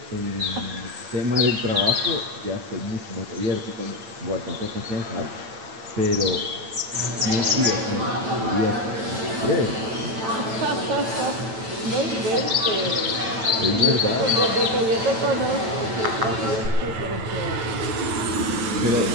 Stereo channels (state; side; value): late; left; 9.0 ms